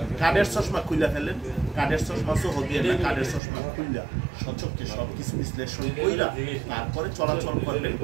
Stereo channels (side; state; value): left; drops out; at 3.4 s